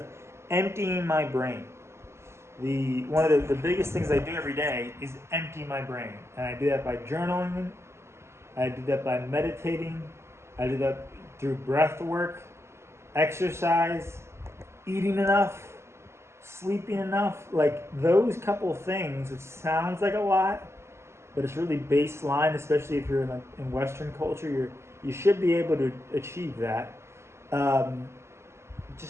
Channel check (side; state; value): left; late; 0.13 ms